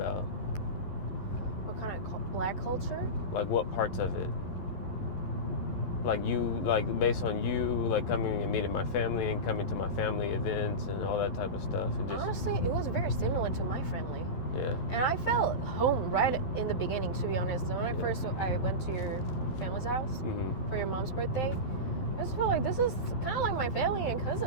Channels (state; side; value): late; right; 11 ms